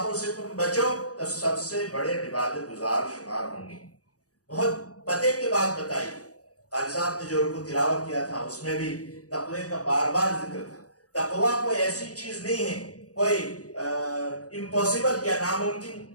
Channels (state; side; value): late; right; 0.67 ms